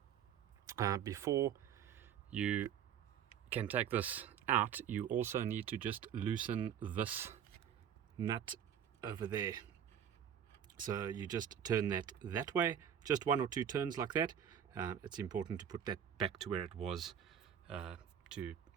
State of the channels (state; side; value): quieter; left; 8.9 dB